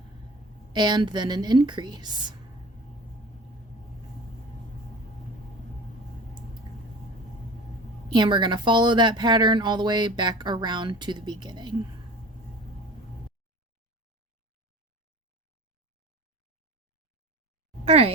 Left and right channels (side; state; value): both; normal; correlation 0.38